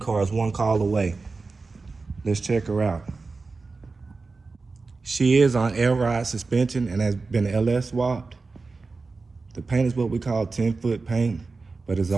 is one call away. Let's check her out. She is on air ride suspension and has been LS swapped. The paint is what we call 10-foot paint, but is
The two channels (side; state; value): left; quieter; 4.0 dB